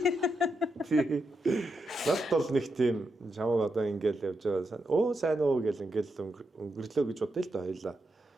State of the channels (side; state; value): both; normal; correlation 0.85